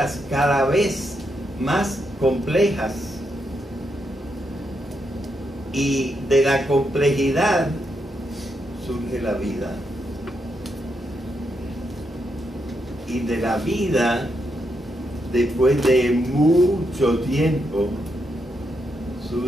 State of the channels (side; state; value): both; normal; correlation 0.81